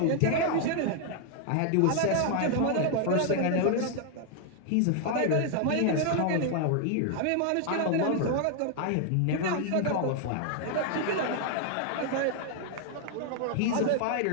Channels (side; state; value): both; different; correlation 0.00